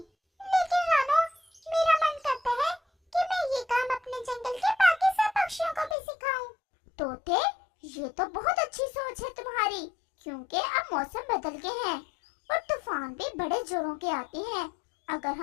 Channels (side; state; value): right; drops out; at 6.0 s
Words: लेकिन रानू, मेरा मन करता है कि मैं ये काम अपने जंगल के बाकी सब पक्षियों को भी सिखाऊं। तोते, ये तो बहुत अच्छी सोच है तुम्हारी, क्योंकि अब मौसम बदल गए हैं और तूफान भी बड़े जोरों के आते हैं। अगर